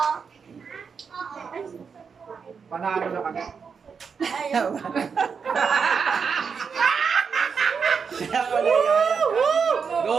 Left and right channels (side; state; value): left; quieter; 6.0 dB